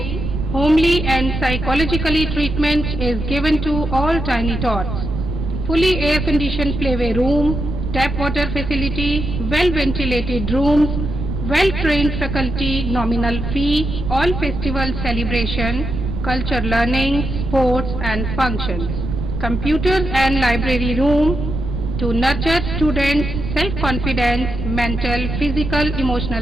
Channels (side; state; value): right; noise; rumble, 4 dB below the sound